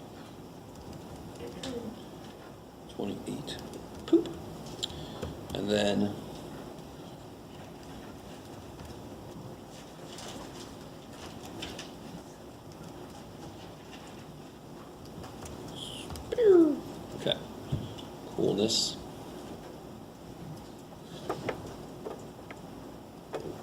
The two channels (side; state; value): both; identical; correlation 1.00